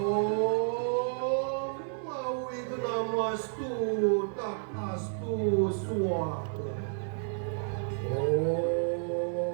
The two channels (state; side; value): silent; left; digital silence